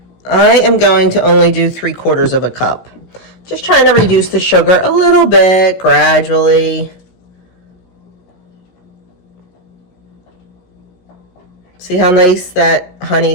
I am going to only do 3/4 of a cup. Just trying to reduce the sugar a little bit gradually. See how nice that honey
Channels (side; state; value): right; late; 17 ms